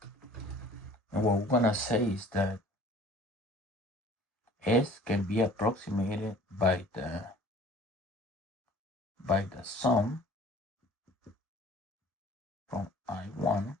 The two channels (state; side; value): normal; both; correlation 0.49